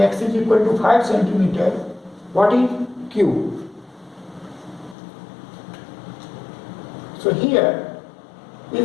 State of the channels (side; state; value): right; drops out; at 5.0 s